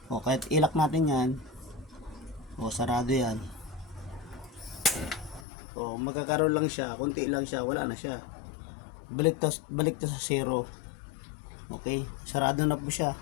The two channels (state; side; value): drops out; right; at 5.5 s